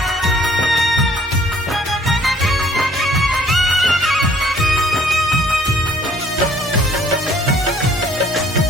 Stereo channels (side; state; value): both; normal; correlation 0.59